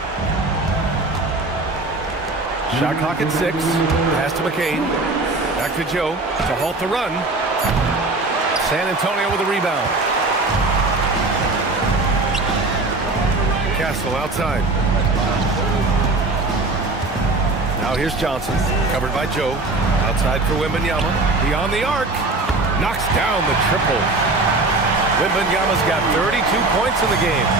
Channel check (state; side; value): quieter; left; 3.2 dB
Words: Shot clock at 6. Pass to McCain. Back to Joe to halt the run. San Antonio with a rebound. Castle outside. Now here's Johnson. Covered by Joe. Outside for Wembanayama. Beyond the arc. Knocks down the triple. Wembanayama's got 32 points in the game.